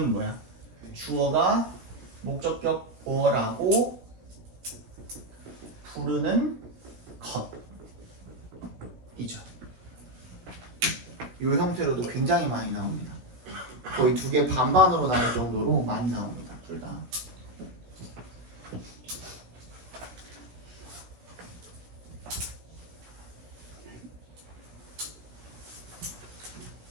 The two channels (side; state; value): left; late; 17 ms